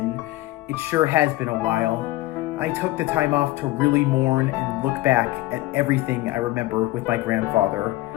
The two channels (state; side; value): quieter; right; 17.6 dB